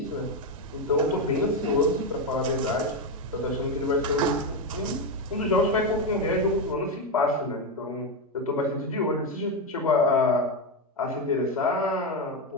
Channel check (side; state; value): both; normal; correlation 0.09